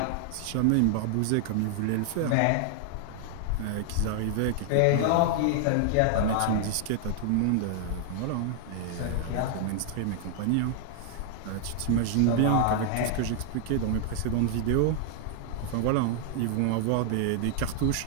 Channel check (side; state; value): both; different; correlation 0.00